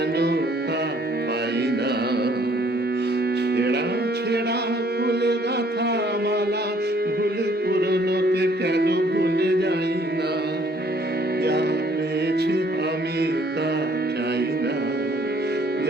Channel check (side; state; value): both; normal; correlation 0.61